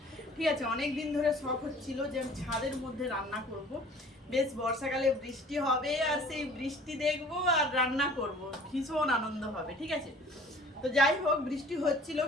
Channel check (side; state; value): both; normal; correlation 0.49